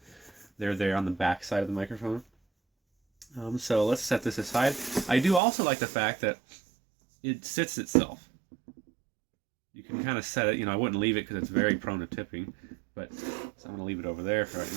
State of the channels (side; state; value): left; drops out; at 5.4 s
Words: they're there on the back side of the microphone. So let's set this aside. I do also like the fact that it sits itself. You can kind of set it, I wouldn't leave it because it's very prone to tipping, but so I'm going to leave it over there for right